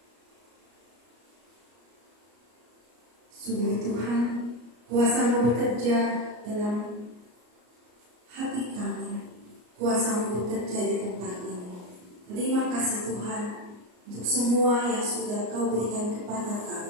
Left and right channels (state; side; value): late; left; 34 ms